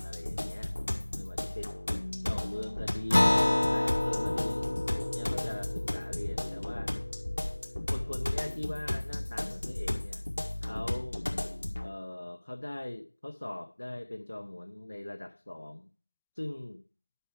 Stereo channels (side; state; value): both; inverted; correlation -1.00